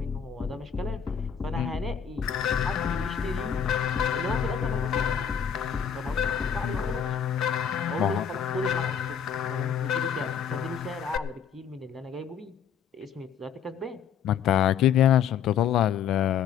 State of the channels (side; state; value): right; quieter; 8.0 dB